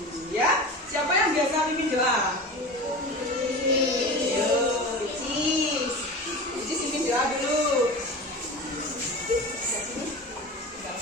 ya. Siapa yang biasa pimpin doa? Icis pimpin doa dulu.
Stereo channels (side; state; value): both; normal; correlation 0.31